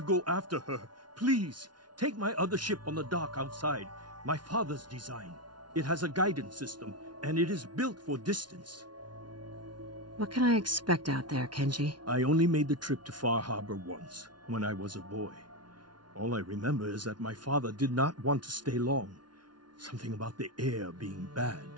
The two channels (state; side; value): late; left; 0.70 ms